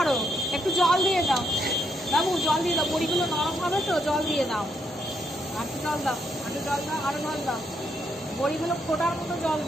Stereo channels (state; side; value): normal; both; correlation 0.76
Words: একটু জল দিয়ে দাও বাবু, জল দিয়ে দাও, বড়িগুলো নরম হবে তো, জল দিয়ে দাও, একটু জল দাও, একটু জল দাও, আরো জল দাও, বড়িগুলো ফোটার মতো জল